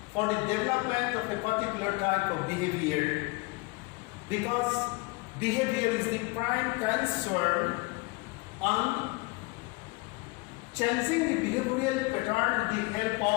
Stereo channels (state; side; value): quieter; right; 26.2 dB